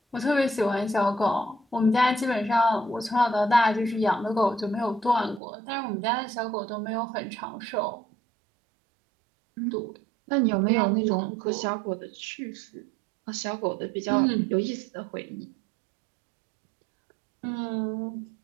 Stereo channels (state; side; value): drops out; left; at 5.4 s